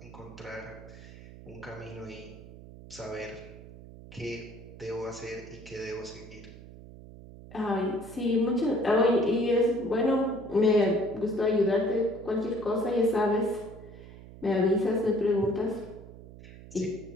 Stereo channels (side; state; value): right; noise; hum, 17 dB below the sound